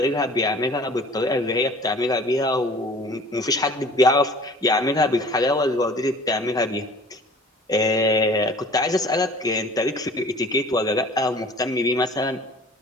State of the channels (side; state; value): both; normal; correlation 0.47